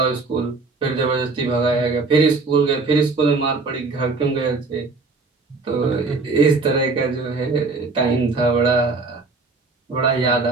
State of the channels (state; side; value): quieter; left; 3.9 dB